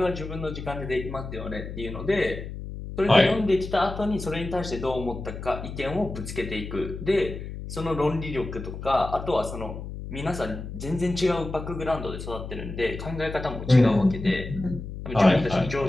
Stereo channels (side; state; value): left; noise; hum, 9 dB below the sound